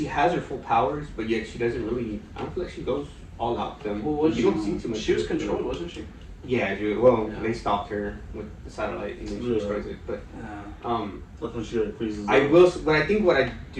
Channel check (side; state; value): both; identical; correlation 1.00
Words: has her full powers, but yet she doesn't really. I don't feel like she goes all out them. Well, you don't see too much. She was controlled, wasn't she? Yeah, they stopped her with the satellite and then she destroys it. But that's when she like freezes. I will, but I think what I